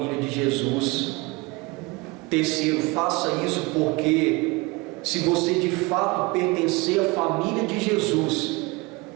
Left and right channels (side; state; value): left; quieter; 24.8 dB